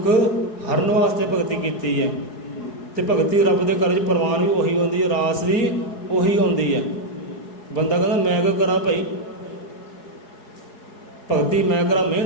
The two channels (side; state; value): right; late; 4.7 ms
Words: ਹਰਨ ਵਾਸਤੇ ਭਗਤੀ ਕੀਤੀ ਹੈ। ਤੇ ਭਗਤੀ ਰੱਬ ਦੇ ਘਰ 'ਚ ਪ੍ਰਵਾਨ ਵੀ ਉਹੀ ਹੁੰਦੀ ਹੈ, ਰਾਸ ਵੀ ਉਹੀ ਆਉਂਦੀ ਹੈ। ਬੰਦਾ ਕਹਿੰਦਾ ਮੈਂ ਕਿਆ ਕਰਾਂ ਭਾਈ, ਭਗਤੀ ਮੈਂ ਕਰਾਂ,